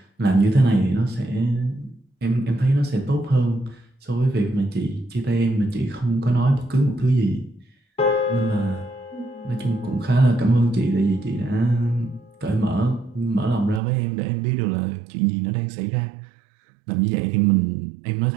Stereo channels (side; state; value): left; drops out; at 13.8 s